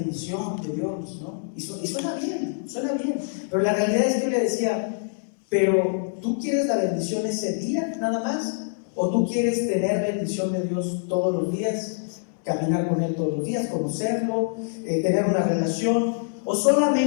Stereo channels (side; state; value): right; silent; 62 dB below the other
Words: de Dios, ¿no? Y suena bien. Pero la realidad es que yo le decía, pero ¿tú quieres la bendición ese día, nada más? ¿O tú quieres tener bendición de Dios todos los días? Caminar con Él todos los días, conocerlo, tener una relación, o